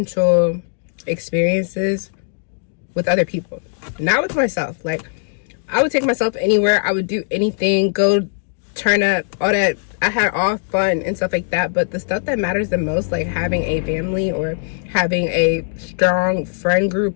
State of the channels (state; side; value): silent; right; digital silence